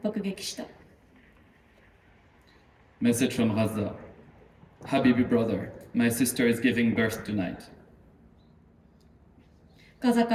爆撃した。Message from Gaza. Habibi brother, my sister is giving birth tonight. ガザ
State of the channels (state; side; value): identical; both; correlation 1.00